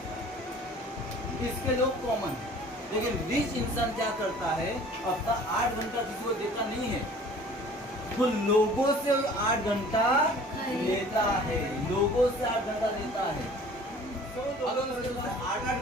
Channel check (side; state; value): both; normal; correlation 0.48